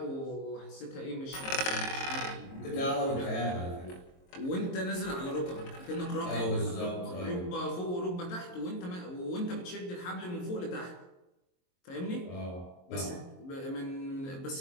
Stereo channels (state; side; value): late; right; 22 ms